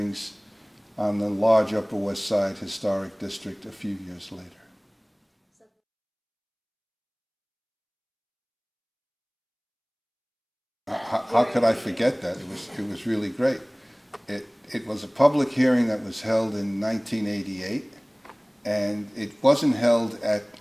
on the large Upper West Side Historic District a few years later. How could I forget that? It was really great. It was a public hearing that was held in 1988, and it wasn't held at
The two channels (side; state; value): both; identical; correlation 1.00